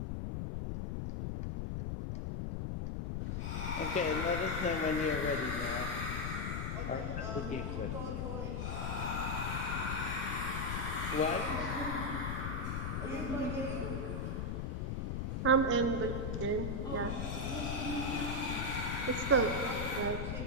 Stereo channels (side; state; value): left; noise; rumble, 1 dB below the sound